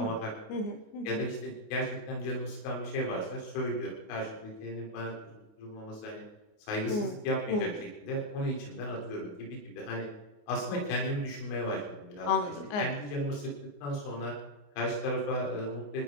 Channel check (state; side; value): late; right; 28 ms